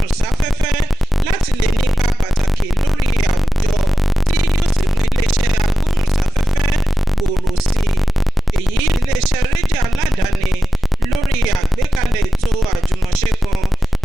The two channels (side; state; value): both; normal; correlation 0.94